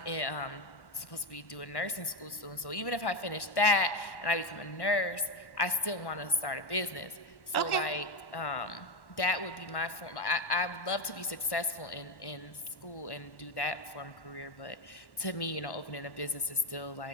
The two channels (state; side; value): late; right; 1.1 ms